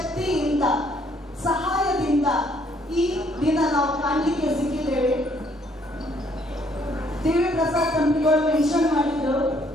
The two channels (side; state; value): both; normal; correlation 0.66